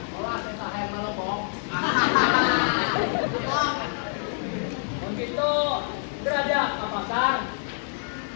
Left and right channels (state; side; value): silent; right; digital silence